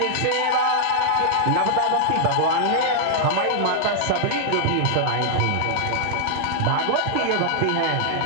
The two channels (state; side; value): different; both; correlation -0.01